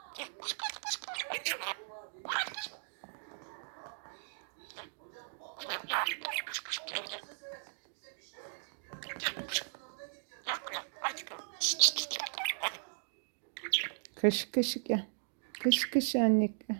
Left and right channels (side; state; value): left; silent; digital silence